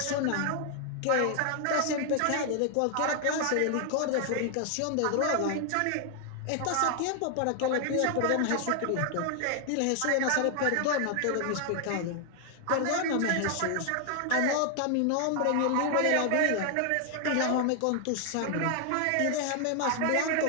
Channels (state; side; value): different; both; correlation 0.00